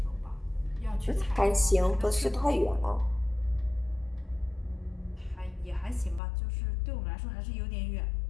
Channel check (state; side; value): drops out; right; at 6.2 s